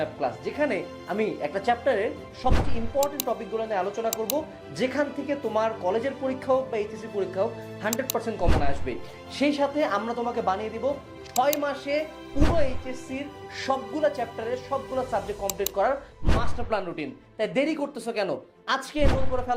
ক্লাস, যেখানে আমি একটা চ্যাপ্টারের সবচেয়ে ইম্পর্টেন্ট টপিকগুলো নিয়ে আলোচনা করব, যেখান থেকে তোমার কলেজের পরীক্ষা হোক বা এইচএসসি পরীক্ষা হোক 100% কমন আসবে। সেই সাথে আমরা তোমাকে বানিয়ে দিব 6 মাসে পুরো এইচএসসির সবগুলো চ্যাপ্টারের সবগুলো সাবজেক্ট কমপ্লিট করার মাস্টার প্ল্যান রুটিন। তাই দেরি করতেছো কেন? আজকে এনরোল করে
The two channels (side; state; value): both; identical; correlation 1.00